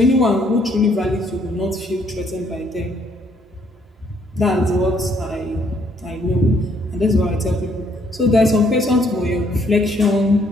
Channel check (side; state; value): both; normal; correlation 0.67